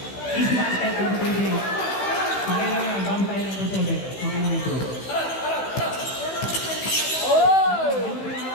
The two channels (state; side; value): late; right; 15 ms